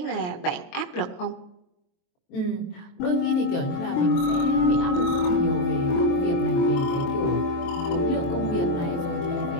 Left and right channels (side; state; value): right; late; 23 ms